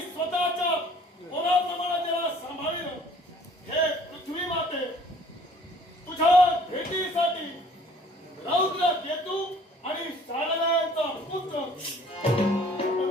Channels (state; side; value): normal; both; correlation 0.54